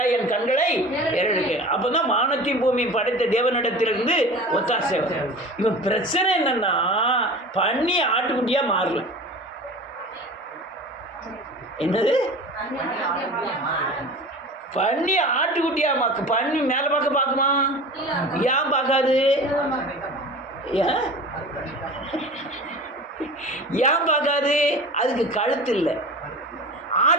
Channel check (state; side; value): normal; both; correlation 0.37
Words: என் கண்களை ஏறெடுக்க. அப்போ தான் வானத்தையும் பூமியும் படைத்த தேவனிடத்திலிருந்து ஒத்தாசை வரும். இவன் பிரச்சனை என்னன்னா, பண்ணி ஆட்டுக்குட்டியாக மாறல. என்னது? பண்ணி ஆட்டுக்குட்டியா மாக்கு. பண்ணி மேலே பார்க்குமா? ஏன் பார்க்காது? ஏன் பார்க்காது? அதுக்கு கழுத்து இல்லை.